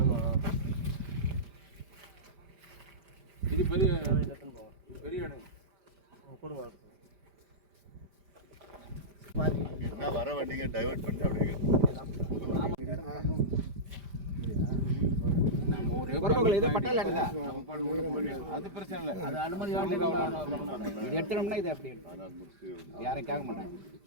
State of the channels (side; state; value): left; late; 5.0 ms